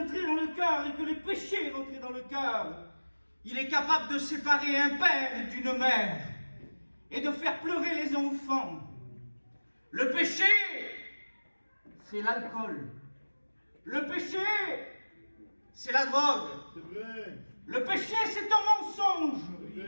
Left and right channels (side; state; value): both; inverted; correlation -1.00